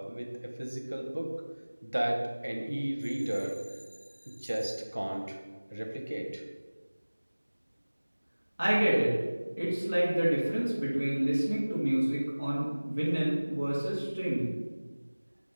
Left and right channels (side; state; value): both; inverted; correlation -1.00